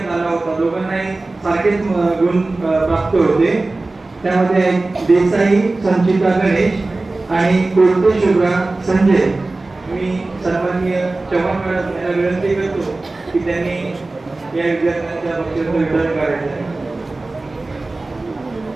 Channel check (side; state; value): left; quieter; 3.2 dB